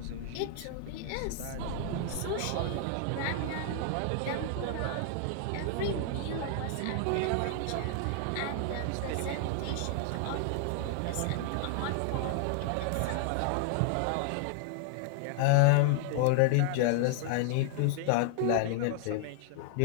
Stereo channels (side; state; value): both; different; correlation 0.00